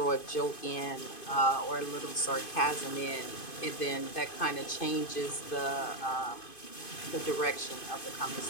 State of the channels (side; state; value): right; late; 2.5 ms